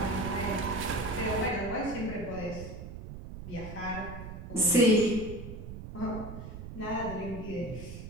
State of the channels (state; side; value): noise; right; rumble, 10 dB below the sound